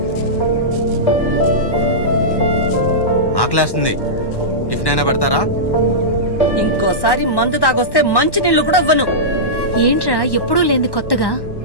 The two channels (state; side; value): late; right; 1.1 ms